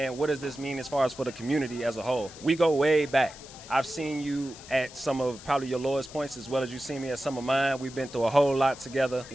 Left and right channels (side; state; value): left; noise; hiss, 17 dB below the sound